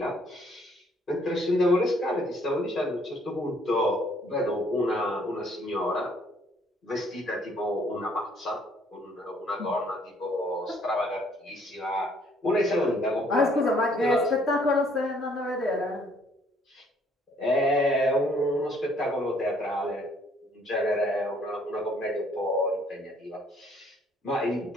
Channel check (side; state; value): both; normal; correlation 0.63